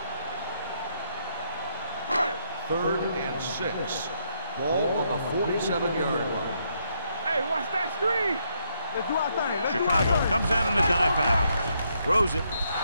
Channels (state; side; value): inverted; both; correlation -0.75